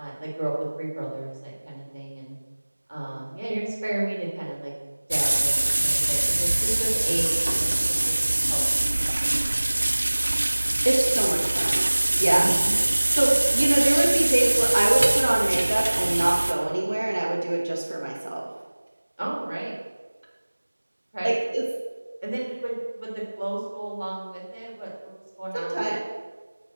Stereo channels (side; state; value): both; inverted; correlation -1.00